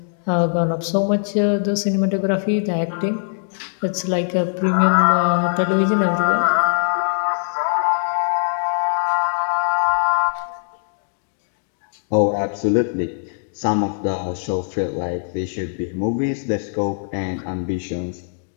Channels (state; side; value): silent; right; digital silence